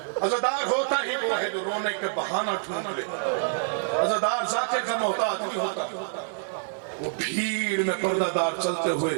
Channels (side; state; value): left; silent; digital silence